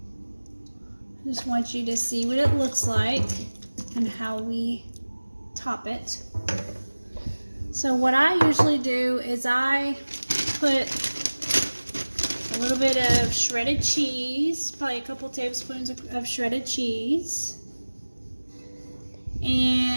I just want you to see what it looks like and how we top it. So what I usually do is I put a little bit of shredded cheese, probably a couple tablespoons of shredded cheese,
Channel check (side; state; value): both; inverted; correlation -1.00